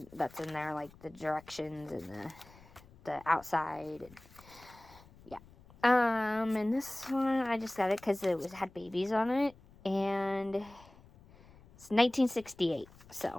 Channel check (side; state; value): left; noise; rumble, 24 dB below the sound